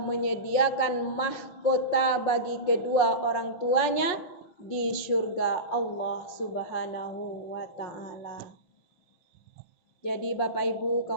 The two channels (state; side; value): late; right; 5.6 ms